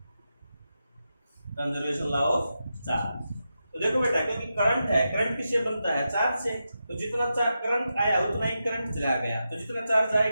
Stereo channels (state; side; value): inverted; both; correlation -0.88